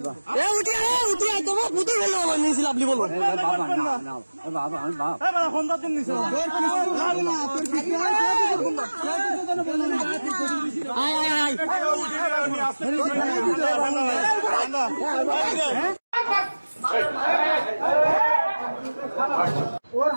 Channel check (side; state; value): both; inverted; correlation -1.00